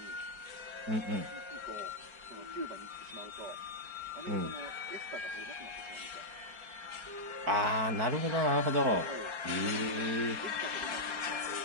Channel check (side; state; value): left; late; 4.3 ms